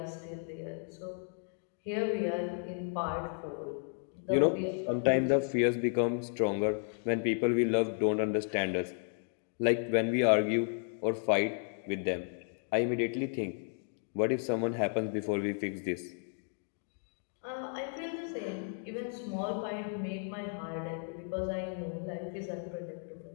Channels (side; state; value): right; silent; 55 dB below the other